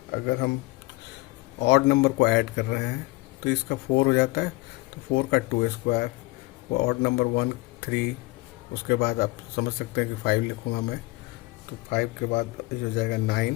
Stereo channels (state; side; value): quieter; right; 22.2 dB